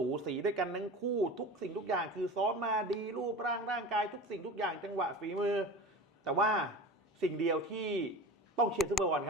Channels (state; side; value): normal; both; correlation 0.33